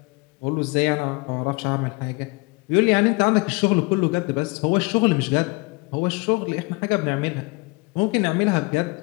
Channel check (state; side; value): quieter; right; 27.5 dB